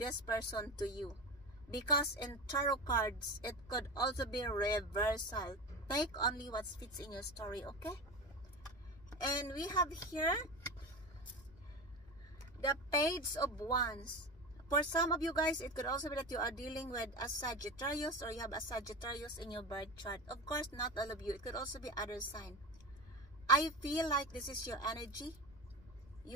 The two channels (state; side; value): noise; left; rumble, 22 dB below the sound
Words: person to you. Because in tarot cards, it could also be reversal. Take only what fits in your story, okay? And we have here the Page of Wands. For some of you guys, it could also be that you are dealing with a Sagittarius, or you have a Sagittarius in your birth chart. Of course, not all of you. It could also be other sign. I feel like this is your energy.